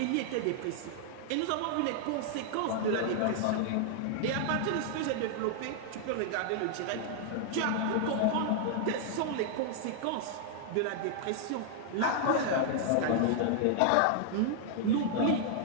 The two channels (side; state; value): both; different; correlation -0.01